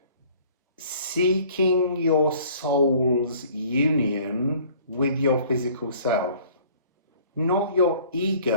seeking your soul's union with your physical self. Not your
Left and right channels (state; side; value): inverted; both; correlation -0.53